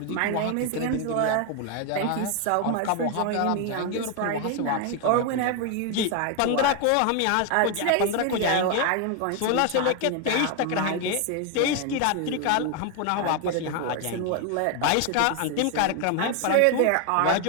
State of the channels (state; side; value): different; both; correlation 0.01